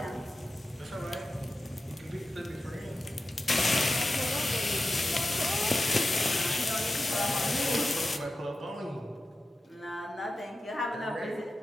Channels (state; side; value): normal; both; correlation 0.93